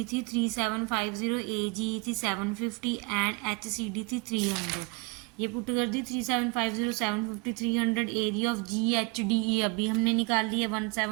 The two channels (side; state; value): left; quieter; 27.4 dB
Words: थी 3750, ए जी थी 750 एंड एच सी डी थी 300। ये पुट कर दी 3750 750 300। Area of ji H D E अभी हमने निकाल ली है